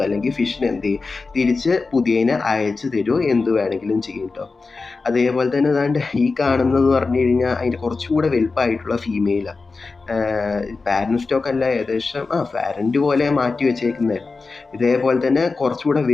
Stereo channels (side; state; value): right; quieter; 4.1 dB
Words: അല്ലെങ്കിൽ ഫിഷിന് എന്ത് ചെയ്യും, തിരിച്ച് പുതിയതിനെ അയച്ചു തരുമോ, എന്ത് വേണമെങ്കിലും ചെയ്യും കേട്ടോ. അതേപോലെ തന്നെ ഈ കാണുന്നതെന്ന് പറഞ്ഞു കഴിഞ്ഞാൽ അതിൻ്റെ കുറച്ചുകൂടെ വലുപ്പമായിട്ടുള്ള ഫീമെയിലാണ്. പാരന്റ് സ്റ്റോക്ക് അല്ല, ഏകദേശം പാരന്റ് പോലെ മാറ്റി വെച്ചേക്കുന്നതായിരുന്നു. ഇതേപോലെ തന്നെ കുറച്ചുകൂടെ